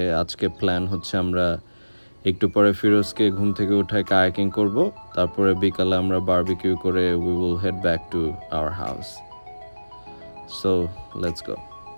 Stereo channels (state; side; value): inverted; both; correlation -1.00